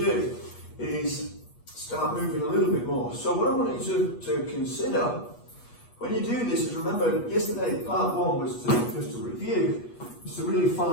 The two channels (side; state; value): right; late; 8.3 ms